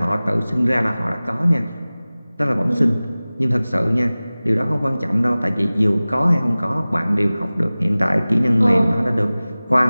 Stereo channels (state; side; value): inverted; both; correlation -0.98